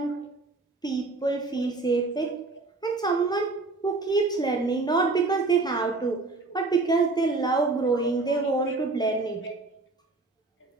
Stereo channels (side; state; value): left; quieter; 3.5 dB